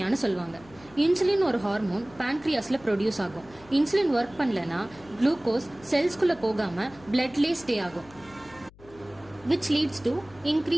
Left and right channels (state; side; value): noise; left; hum, 24 dB below the sound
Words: சொல்லுவாங்க. இன்சுலின் ஒரு ஹார்மோன் பேன்க்ரியாஸில் ப்ரொடியூஸ் ஆகும். இன்சுலின் ஒர்க் பண்ணலன்னா குளுக்கோஸ் செல்ஸ்குள்ளே போகாமல் பிளட்லேயே ஸ்டே ஆகும், which leads to